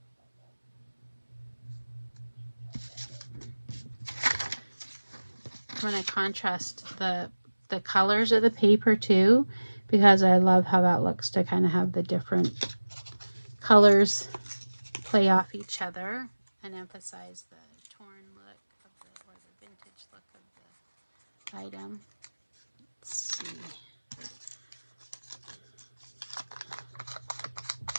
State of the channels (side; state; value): both; inverted; correlation -1.00